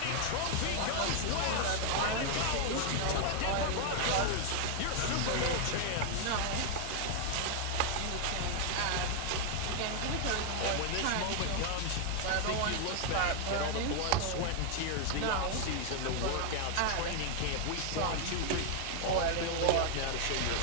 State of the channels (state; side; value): different; both; correlation 0.00